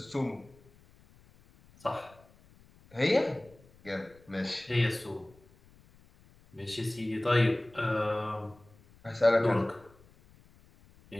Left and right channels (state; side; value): noise; left; rumble, 27 dB below the sound